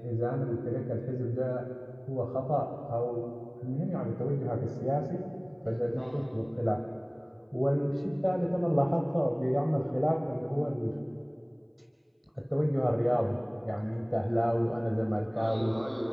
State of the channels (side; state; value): both; identical; correlation 1.00